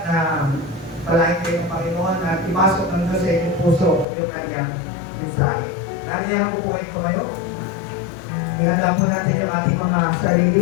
na palain kayo ng Panginoon at ipasok ng Diyos sa inyong puso yung kanyang mensahe. Naniyahan ko po kayo. Ihanda po natin yung ating mga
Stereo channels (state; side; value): drops out; right; at 4.0 s